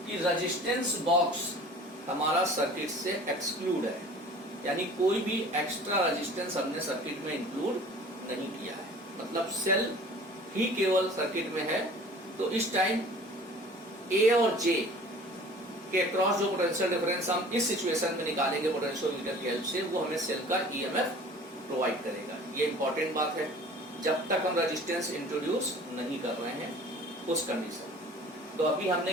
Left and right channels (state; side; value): normal; both; correlation 0.46